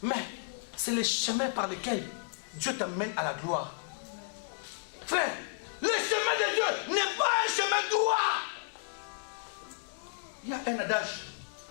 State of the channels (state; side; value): silent; right; digital silence